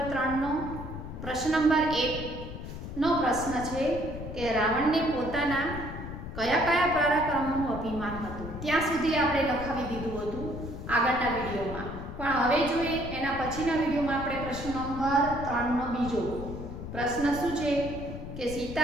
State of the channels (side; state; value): left; noise; rumble, 9 dB below the sound